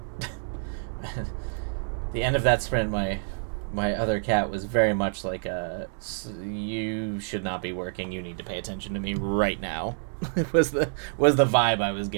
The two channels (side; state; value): left; silent; digital silence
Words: The end of that sprint, my other cat was very much like you should not be working. You need to pay attention to me right now. It was the vibe I was